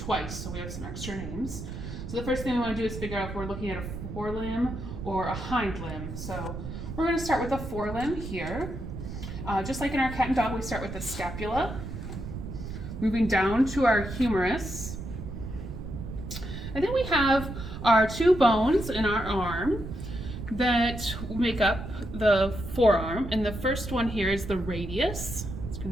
so we have some extra names. So the first thing we want to do is figure out if we're looking at a forelimb or a hind limb. So we're going to start with a forelimb here. Just like in our cat and dog, we start with the scapula, moving down to our humerus. And then we have our two bones in our arm that make up the forearm. And the first one here is the radius. It's going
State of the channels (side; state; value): right; noise; rumble, 8 dB below the sound